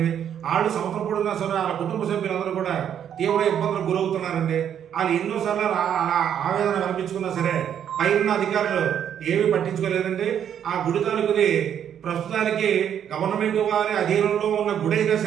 వాళ్ళు సంవత్సరం పొడిగినా సరే వాళ్ళ కుటుంబ సభ్యులందరూ కూడా తీవ్ర ఇబ్బందులకు గురవుతున్నారండి. వాళ్ళు ఎన్నోసార్లు అలా ఆవేదన కల్పించుకున్నా సరే పైన అధికారులు ఏమీ పట్టించుకోలేదండి. ఆ గుడి తాలూకుది ప్రస్తుతానికి గవర్నమెంట్ వారి అధీనంలో ఉన్న గుడి అయినా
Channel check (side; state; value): left; quieter; 9.2 dB